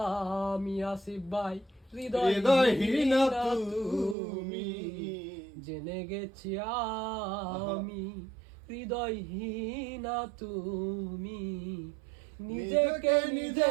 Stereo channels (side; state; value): left; drops out; at 4.2 s